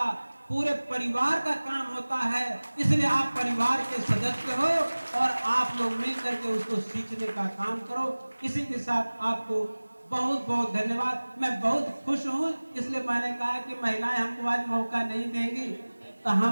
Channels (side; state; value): both; inverted; correlation -1.00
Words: पूरे परिवार का काम होता है। इसलिए आप परिवार के सदस्य हो और आप लोग मिलकर के उसको सींचने का काम करो। इसी के साथ आपको बहुत बहुत धन्यवाद। मैं बहुत खुश हूँ, इसलिए मैंने कहा कि महिलाएं हमको आज मौका नहीं देंगी, तो